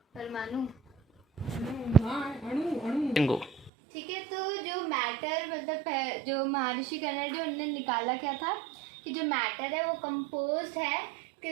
ठीक है, तो जो मैटर मतलब जो महर्षि कन्नडा उन्होंने निकाला क्या था कि जो मैटर है वो कंपोज्ड है,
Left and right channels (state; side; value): drops out; left; at 3.7 s